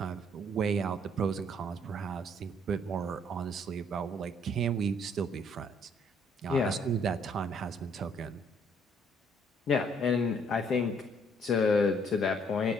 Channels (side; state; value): both; normal; correlation 0.65